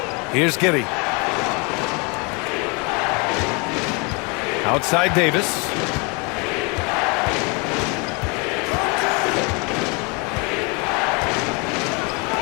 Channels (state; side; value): quieter; right; 31.0 dB